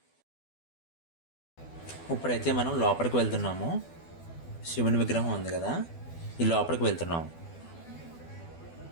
ఇప్పుడైతే మనం లోపలికి వెళ్తున్నాము. శివుని విగ్రహం ఉంది కదా, ఈ లోపలికి వెళ్తున్నాము.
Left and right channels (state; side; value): late; right; 12 ms